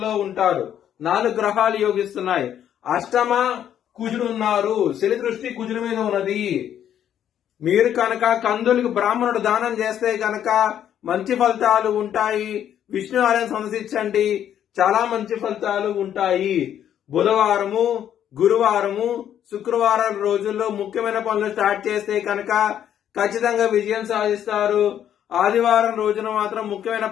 ఉంటాడు. 4 గ్రహాలు యోగిస్తున్నాయి. అష్టమ కుజుడు ఉన్నారు. శని దృష్టి కుజుడి మీద ఉన్నది. మీరు కనుక కందులకు బ్రాహ్మణుడు దానం చేస్తే కనుక మంచి ఫలితాలు ఉంటాయి. విష్ణు ఆలయం సందర్శించండి, చాలా మంచి ఫలితాలు ఉంటాయి. బుధవారము, గురువారము, శుక్రవారం రోజుల్లో ముఖ్యమైన పనులు స్టార్ట్ చేస్తే కనుక ఖచ్చితంగా విజయం సాధిస్తారు. ఆదివారం రోజున మాత్రం ముఖ్యమైన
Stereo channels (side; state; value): right; quieter; 10.1 dB